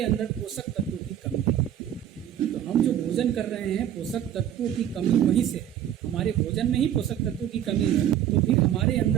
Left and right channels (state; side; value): quieter; left; 10.6 dB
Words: अंदर पोषक तत्वों की कमी है। तो हम जो भोजन कर रहे हैं, पोषक तत्वों की कमी वहीं से है। हमारे भोजन में ही पोषक तत्वों की कमी है, तो फिर हमारे